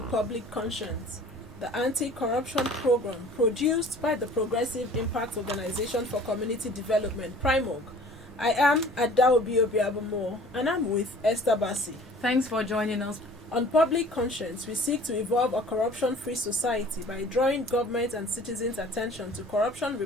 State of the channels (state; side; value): normal; both; correlation 0.49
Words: Public Conscience, the anti-corruption program produced by the Progressive Impact Organization for Community Development, PRIMOG. I am Adaobi Obiabomo and I'm with Esther Bassi. Thanks for joining us. On Public Conscience, we seek to evolve a corruption-free society by drawing government and citizens' attention to corruption